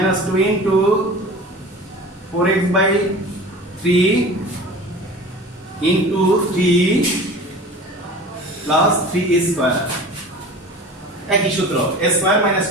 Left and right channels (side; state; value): both; normal; correlation 0.38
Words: 2 into 4x/3 into 3 plus 3 square, একই সূত্র, a square minus